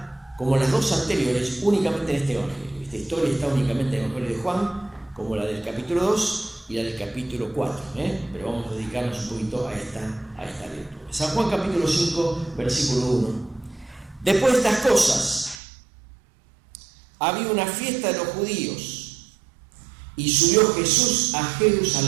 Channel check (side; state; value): left; drops out; at 15.6 s